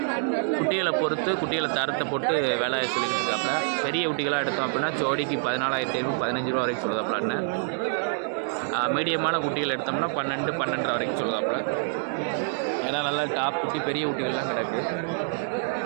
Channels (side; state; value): left; silent; digital silence